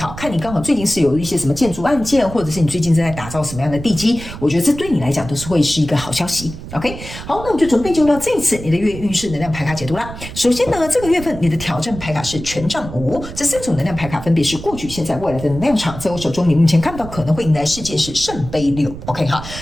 看你刚好最近是有一些什么建筑案件，或者是你最近正在打造什么样的地基，我觉得这对你来讲都是会是一个好消息 ，OK。好，那我们就准备进入到这一次你的月运势能量牌卡解读啦。首先呢，这个月份你的挑战牌卡是权杖5，这3种能量牌卡分别是过去、现在、未来的能量场，在我手中你目前看到可能会迎来事件是圣杯6 ，OK 哈。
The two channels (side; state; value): right; noise; rumble, 12 dB below the sound